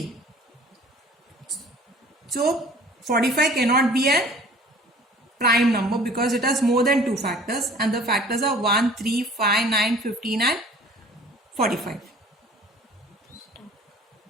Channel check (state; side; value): normal; both; correlation 0.49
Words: So 45 cannot be a prime number because it has more than 2 factors, and the factors are 1, 3, 5, 9, 15 and 45.